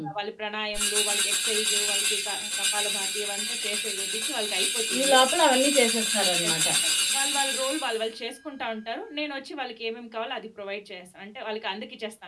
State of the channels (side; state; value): both; identical; correlation 1.00